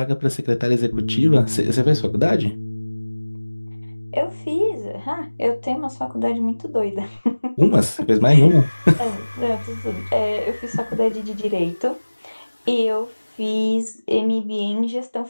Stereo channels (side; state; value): both; inverted; correlation -1.00